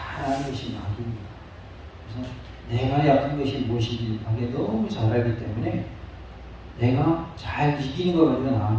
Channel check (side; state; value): both; identical; correlation 1.00